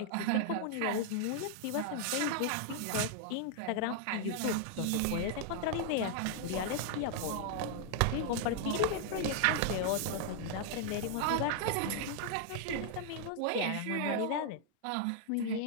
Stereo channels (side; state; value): both; different; correlation 0.00